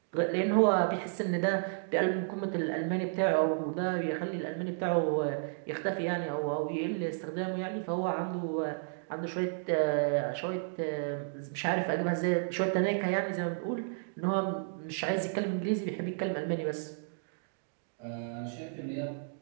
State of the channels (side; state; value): left; silent; digital silence